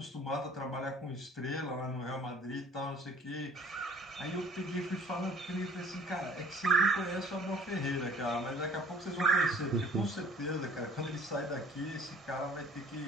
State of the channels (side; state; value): both; normal; correlation 0.51